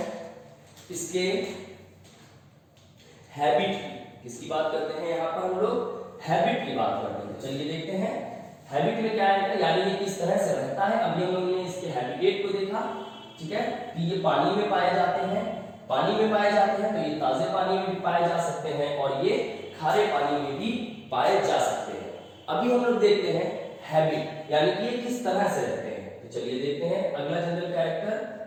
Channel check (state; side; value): identical; both; correlation 1.00